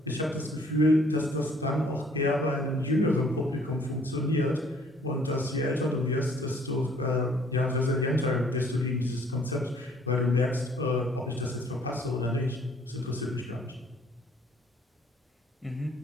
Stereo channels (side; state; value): both; normal; correlation 0.59